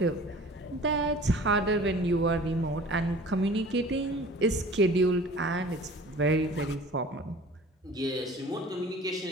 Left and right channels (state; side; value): normal; both; correlation 0.45